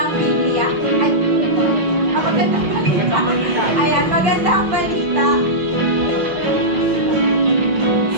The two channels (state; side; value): late; left; 5.8 ms